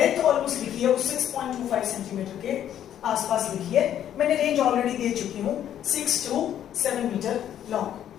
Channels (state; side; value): quieter; right; 10.6 dB